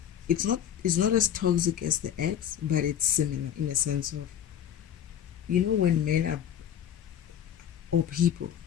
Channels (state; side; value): quieter; right; 9.9 dB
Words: it's not as toxic as the ex, but it's similar in a sense of, when men are, or people,